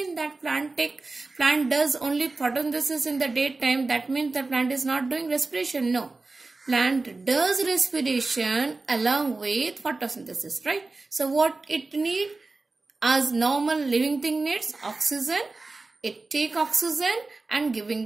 that plant does only photosynthesis in the daytime. That means the plant is not doing respiration. No. Plant does respiration along with photosynthesis, right? So what it need? As normal living thing needs oxygen, it take oxygen and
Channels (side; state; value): left; quieter; 3.5 dB